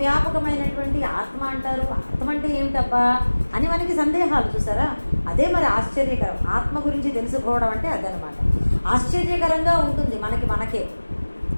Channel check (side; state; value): both; inverted; correlation -1.00